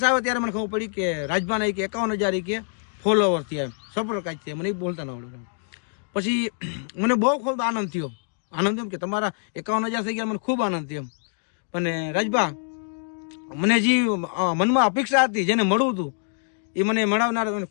આવ્યા ત્યારે મને ખબર પડી કે રાજભાના કે 51,000 કે ફોલોવર થયા, સબસ્ક્રાઇબ થયા, મને એ બોલતા ન આવડે. પછી મને બહુ ખૂબ આનંદ થયો એમ કે તમારા 51,000 થઈ ગયા, મને ખૂબ આનંદ થયો. અને રાજભા મને જે મનમાં અપેક્ષા હતી, જેને મળવું હતું એ મને મળાવનાર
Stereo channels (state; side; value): silent; right; digital silence